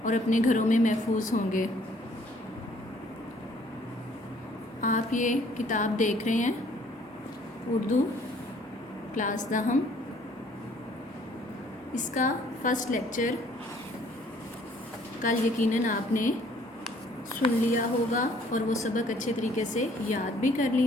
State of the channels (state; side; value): normal; both; correlation 0.60